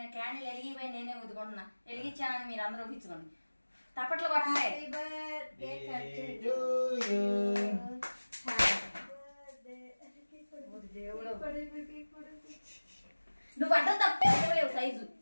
క్యాండిల్ వెలిగిపోయి నేనే ఊదుకుంటున్నా. వెలిగించానని మీరు అందరూ ఊహించుకోండి. తప్పట్లు కొట్టండి. Happy birthday to you. దేవుడు నువ్వు అడ్డం తప్పలేవు సైజు.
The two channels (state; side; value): inverted; both; correlation -1.00